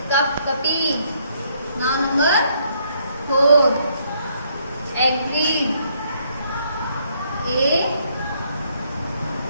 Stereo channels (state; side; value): inverted; both; correlation -0.70